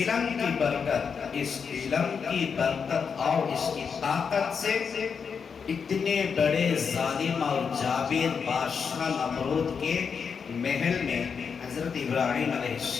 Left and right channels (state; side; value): quieter; right; 6.2 dB